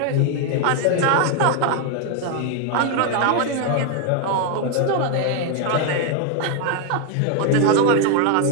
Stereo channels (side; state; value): both; different; correlation 0.01